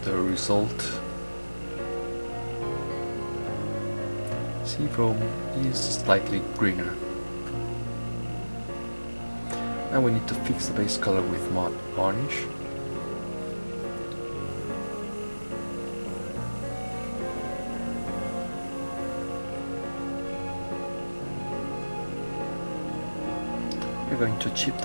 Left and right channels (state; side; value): inverted; both; correlation -1.00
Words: the result. Sea foam is slightly greener. Now we need to fix the base color with matte varnish. We're going to chip